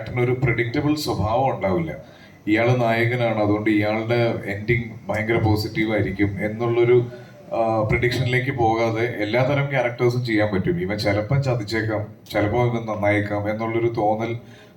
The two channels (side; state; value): both; identical; correlation 1.00